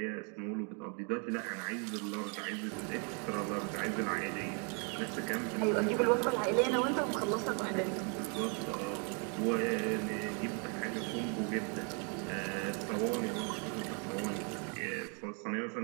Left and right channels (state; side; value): quieter; left; 37.5 dB